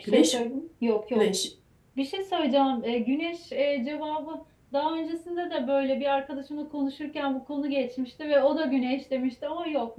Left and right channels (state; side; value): identical; both; correlation 1.00